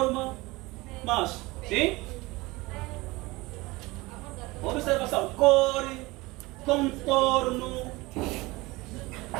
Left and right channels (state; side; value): quieter; left; 22.0 dB